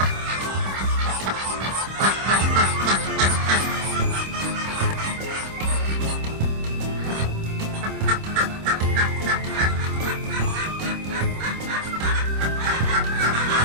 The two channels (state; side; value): late; left; 26 ms